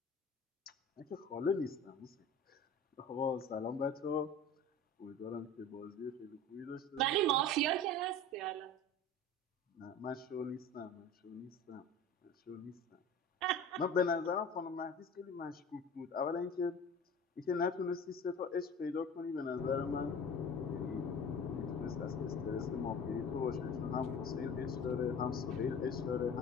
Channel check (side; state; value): both; normal; correlation 0.37